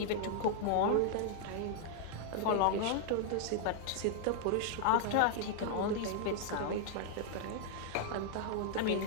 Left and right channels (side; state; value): both; different; correlation -0.01